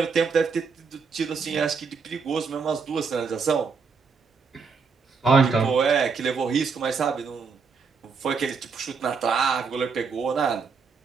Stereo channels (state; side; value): quieter; left; 5.3 dB